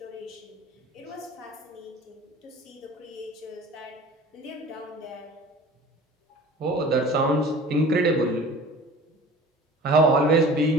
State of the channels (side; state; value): both; normal; correlation 0.42